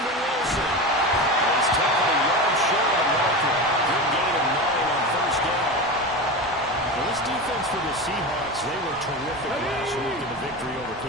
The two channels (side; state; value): both; normal; correlation 0.24